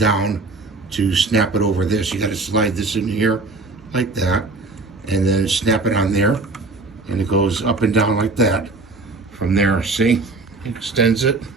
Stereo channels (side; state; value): left; quieter; 3.5 dB